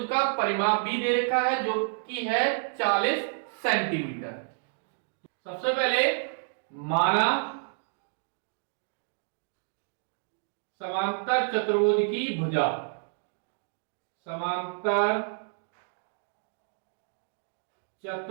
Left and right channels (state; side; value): silent; left; digital silence